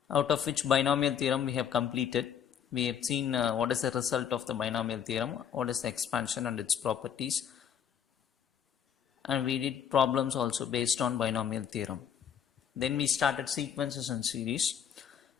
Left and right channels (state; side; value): quieter; right; 8.6 dB